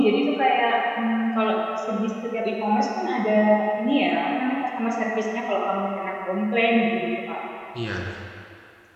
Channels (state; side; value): identical; both; correlation 1.00